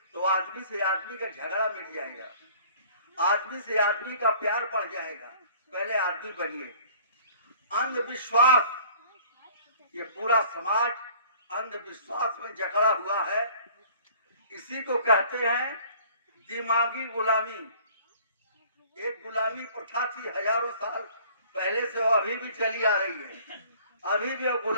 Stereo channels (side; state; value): both; inverted; correlation -0.51